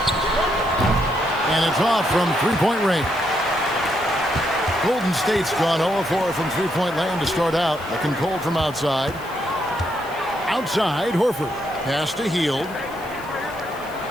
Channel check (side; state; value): left; noise; hiss, 22 dB below the sound